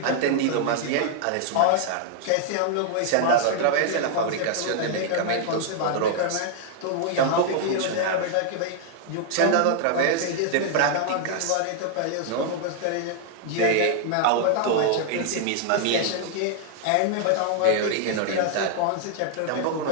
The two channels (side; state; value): both; different; correlation 0.00